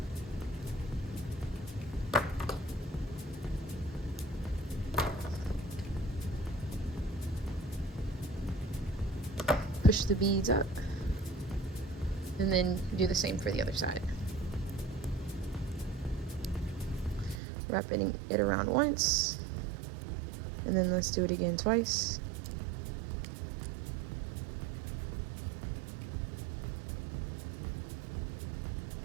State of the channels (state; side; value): drops out; left; at 17.4 s